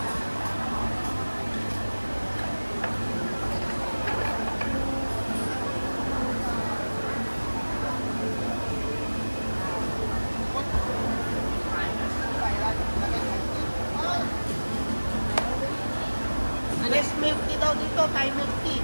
Yes, milk tea daw dito, Thai milk tea.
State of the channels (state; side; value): inverted; both; correlation -1.00